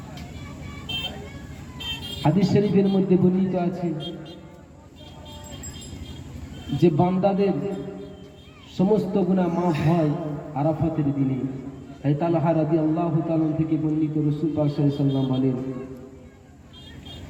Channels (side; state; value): both; identical; correlation 1.00